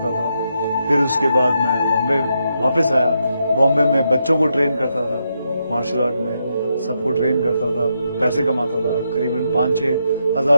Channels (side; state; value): both; inverted; correlation -0.82